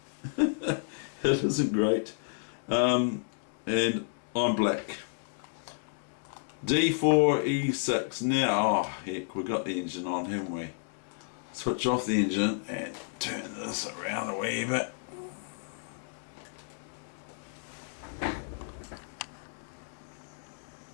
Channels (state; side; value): silent; right; 57 dB below the other